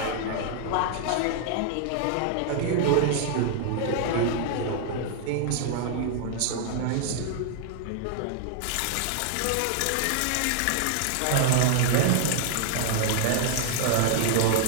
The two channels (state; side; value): different; both; correlation 0.00